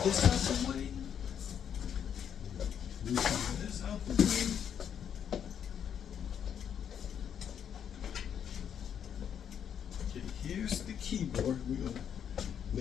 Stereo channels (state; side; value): quieter; right; 8.5 dB